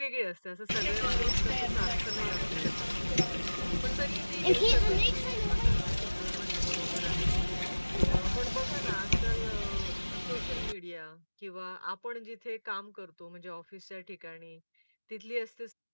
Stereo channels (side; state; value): both; inverted; correlation -1.00